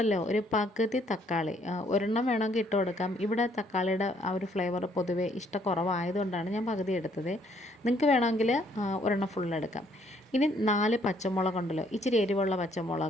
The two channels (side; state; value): both; normal; correlation 0.66